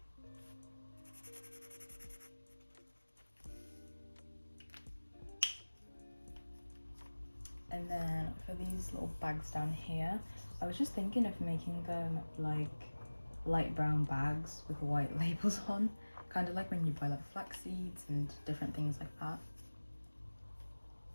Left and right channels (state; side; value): inverted; both; correlation -1.00